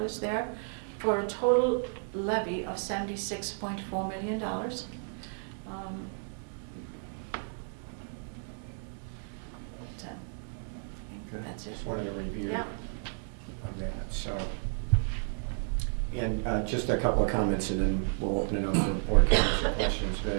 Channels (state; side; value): silent; left; 56 dB below the other